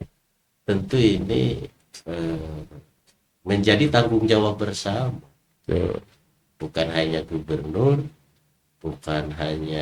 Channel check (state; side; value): identical; both; correlation 1.00